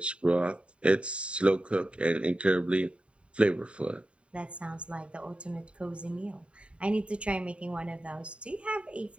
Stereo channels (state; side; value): late; left; 0.059 ms